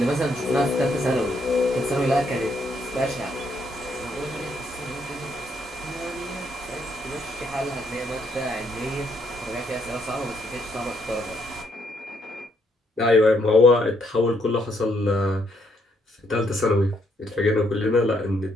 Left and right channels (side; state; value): both; normal; correlation 0.72